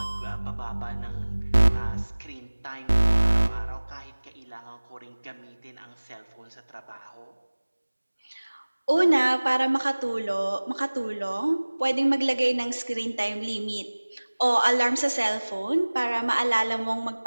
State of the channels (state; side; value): inverted; both; correlation -1.00